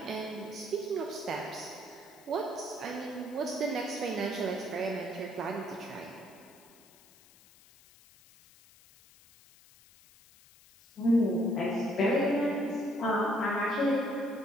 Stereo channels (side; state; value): left; noise; hiss, 25 dB below the sound